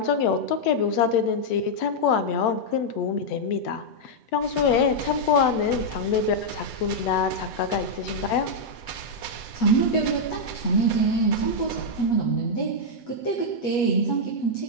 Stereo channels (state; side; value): late; right; 8.0 ms